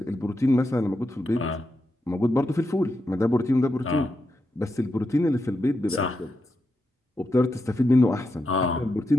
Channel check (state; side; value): normal; both; correlation 0.86